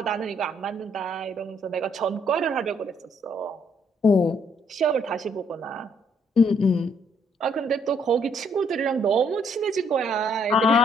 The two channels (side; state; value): both; normal; correlation 0.68